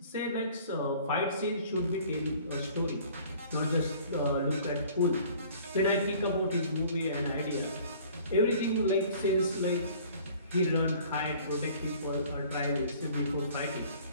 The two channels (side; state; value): both; inverted; correlation -0.51